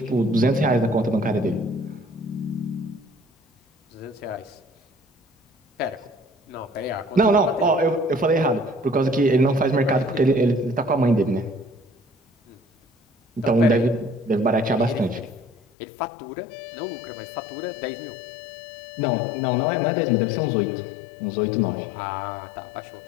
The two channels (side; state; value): right; drops out; at 15.6 s